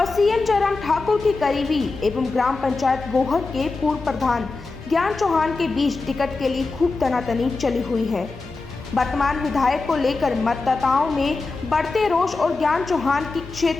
सीएम जयराम ठाकुर की करीबी एवं ग्राम पंचायत गोहर के पूर्व प्रधान ज्ञान चौहान के बीच टिकट के लिए खूब तनातनी चली हुई है। वर्तमान विधायक को लेकर मतदाताओं में बढ़ते रोष और ज्ञान चौहान की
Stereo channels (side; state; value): right; quieter; 3.7 dB